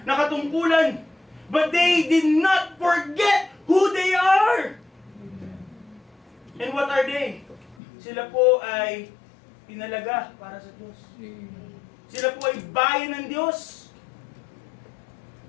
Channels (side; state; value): right; drops out; at 7.8 s